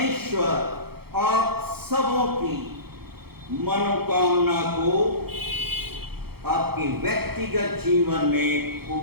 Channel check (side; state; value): left; late; 0.96 ms